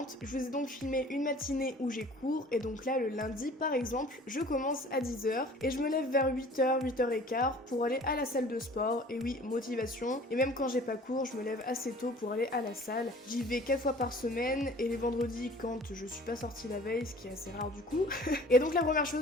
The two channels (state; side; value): normal; both; correlation 0.48